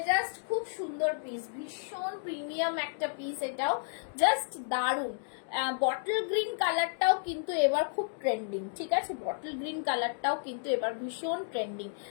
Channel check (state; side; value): silent; right; digital silence